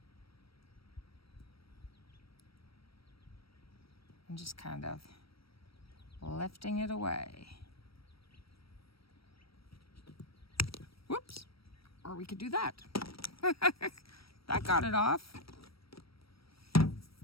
and just kind of lifting it away. Whoops, or we could do that. That got it off.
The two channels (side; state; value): right; late; 0.75 ms